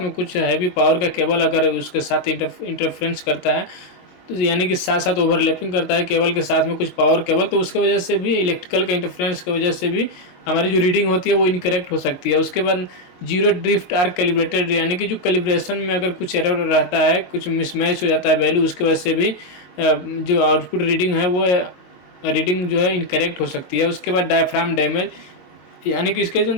में कुछ हैवी पावर का केबल अगर उसके साथ इंटरफेरेंस करता है, तो यानी कि साथ ओवरलैपिंग करता है केबल के साथ में कुछ पावर केबल, तो उसकी वजह से भी इलेक्ट्रिकल का इंटरफेरेंस की वजह से भी हमारी जो रीडिंग होती है वो इनकरेक्ट हो सकती है। उसके बाद जीरो ड्रिफ्ट आर कैलिब्रेटेड, यानी कि जो कैलिब्रेशन में अगर कुछ एरर रहता है, कुछ मिसमैच हो जाता है वैल्यू, उसकी वजह से भी जो आउटपुट रीडिंग है वो रीडिंग जो है इनकरेक्ट हो सकती है। उसके बाद डायफ्राम डैमेज, यानी कि इसके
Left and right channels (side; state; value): right; late; 22 ms